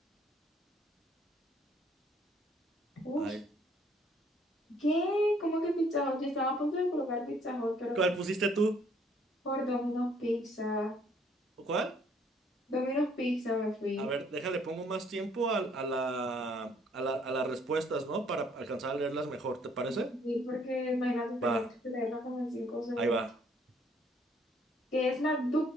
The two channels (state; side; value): normal; both; correlation 0.64